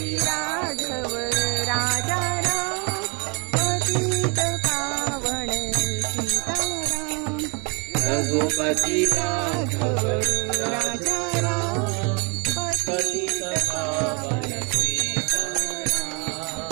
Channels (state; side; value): quieter; left; 33.9 dB